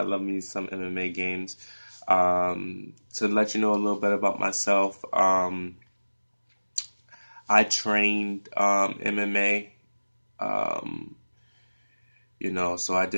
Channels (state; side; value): inverted; both; correlation -1.00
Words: love me some MMA games. To let you know a little bit about myself, I trained MMA. Um, so I